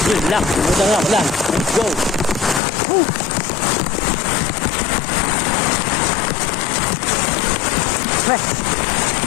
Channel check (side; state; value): right; drops out; at 2.6 s